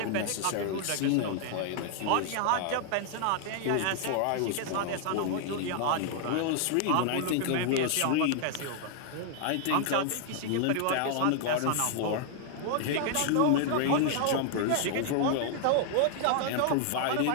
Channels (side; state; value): both; different; correlation 0.00